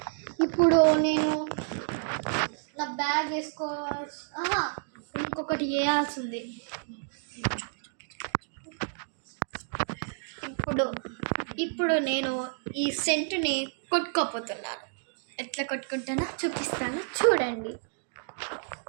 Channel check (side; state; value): left; silent; digital silence